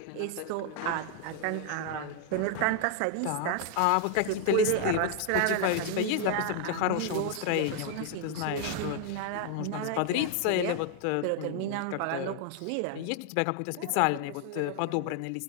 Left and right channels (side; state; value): both; different; correlation 0.00